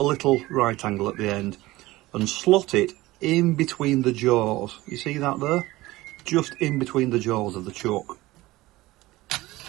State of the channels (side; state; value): left; quieter; 18.6 dB